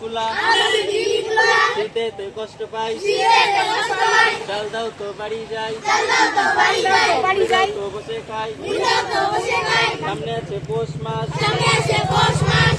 কুলা, শীতে তো কষ্ট পাই, চাল দাও তো বাড়ি যাই, তো বসে খাই, সামনে আছে পৌষ মাস,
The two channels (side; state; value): both; identical; correlation 1.00